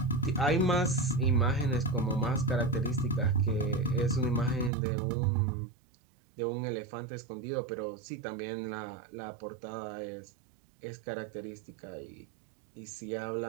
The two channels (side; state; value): left; drops out; at 4.7 s